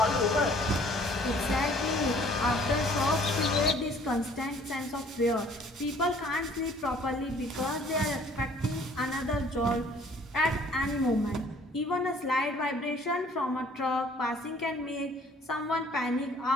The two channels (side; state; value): both; normal; correlation 0.56